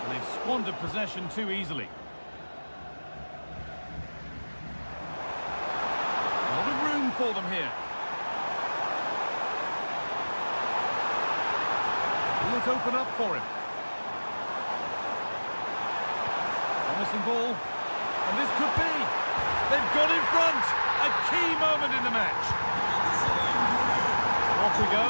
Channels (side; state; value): both; inverted; correlation -1.00